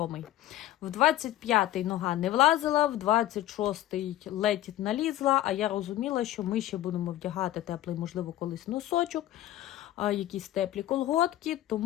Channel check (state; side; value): quieter; right; 13.9 dB